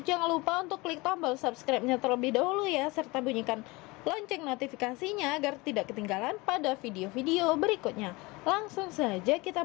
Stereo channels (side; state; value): right; quieter; 23.8 dB